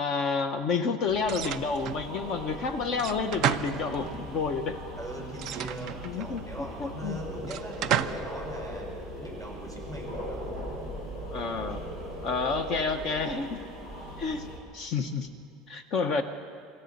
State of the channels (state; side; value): normal; both; correlation 0.36